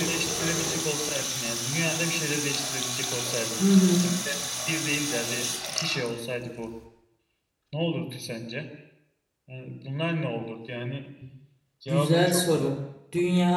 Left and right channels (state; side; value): identical; both; correlation 1.00